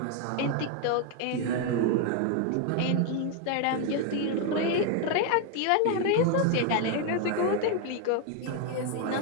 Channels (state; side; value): different; both; correlation 0.01